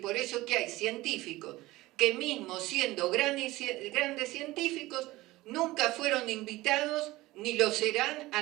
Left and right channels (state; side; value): quieter; left; 18.8 dB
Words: eso que hay científicos que mismo siendo grandes científicos, nunca fueron invitados ni lo serán a